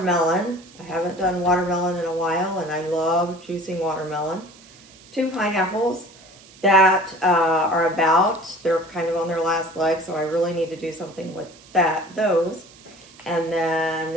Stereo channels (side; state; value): right; noise; hiss, 24 dB below the sound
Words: I haven't done watermelon in a while, and I love juicing watermelon. 2 pineapples that they're kind of on their last leg, so I really need to do something with those. And